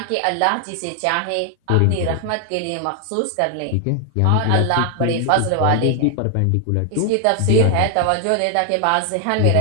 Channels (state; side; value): different; both; correlation 0.00